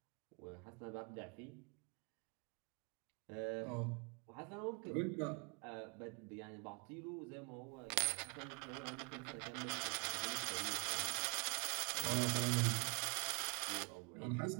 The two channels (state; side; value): quieter; left; 34.2 dB